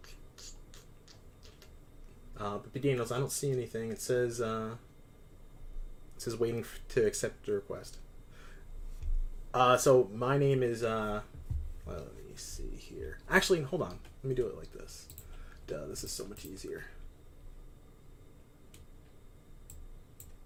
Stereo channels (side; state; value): both; identical; correlation 1.00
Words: But Daniels, I don't see anything. It says waiting to accept the request. So my name is well, let me see here. Actually, hold on. Let me do it like this. Duh, this is so much easier.